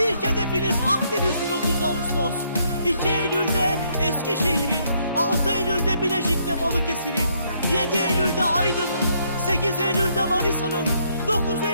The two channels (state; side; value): inverted; both; correlation -0.71